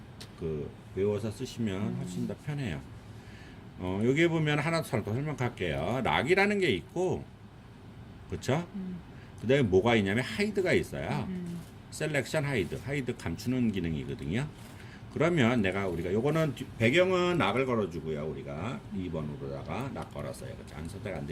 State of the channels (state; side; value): identical; both; correlation 1.00